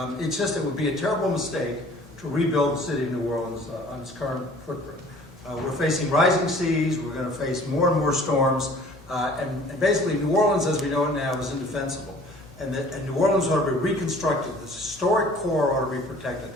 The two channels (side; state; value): both; normal; correlation 0.50